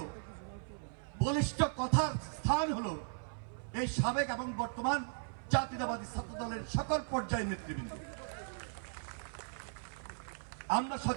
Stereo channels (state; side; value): silent; left; 53 dB below the other